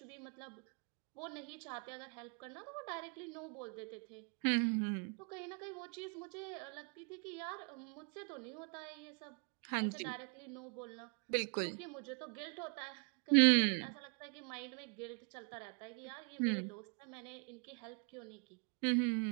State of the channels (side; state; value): left; quieter; 37.8 dB